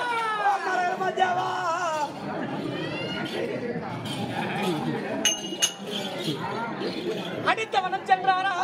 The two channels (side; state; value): both; identical; correlation 1.00